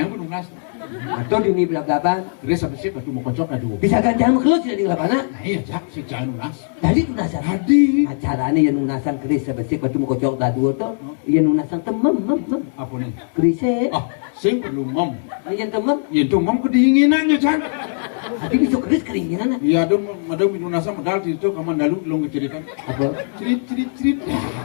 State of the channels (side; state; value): right; silent; digital silence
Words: pun lunas. Atau di ini belak-belakan. Keris sama sih padu mau kocok na dua. Bisa ganjang keluar tidak di lapangan. Nah iya, Cak, si jangan lunas. Jadi nunasan. Tadi. Acaranya yang nunasan keris sebesik batu mau kocok dua tuh. Yang nunasan temem. Apa nih? Kerisnya. Ah, sing perlu mom. Ini yang temem. Yentu mom kedinginan ya, Cak. Hati bisa keris keringinan. Iya, ada minunasa medal di situ kamandalu belum keceritaan. Apa? Cerit. Ya,